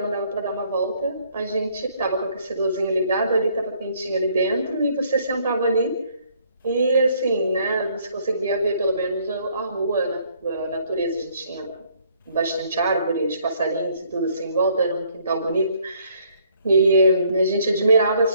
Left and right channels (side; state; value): both; inverted; correlation -0.65